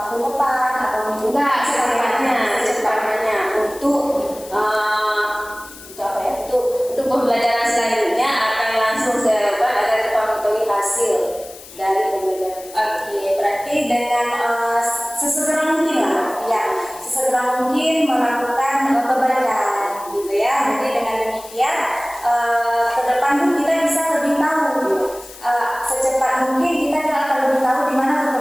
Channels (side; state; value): left; noise; hiss, 18 dB below the sound